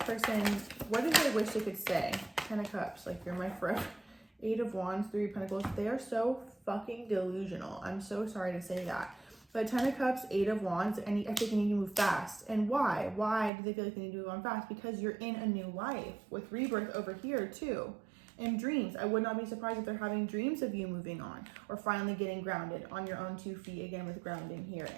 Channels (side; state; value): left; drops out; at 13.5 s